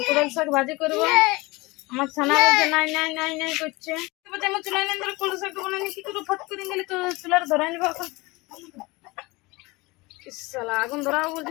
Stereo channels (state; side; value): quieter; right; 23.2 dB